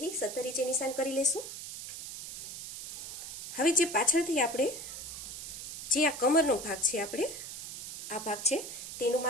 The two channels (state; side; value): noise; right; hiss, 8 dB below the sound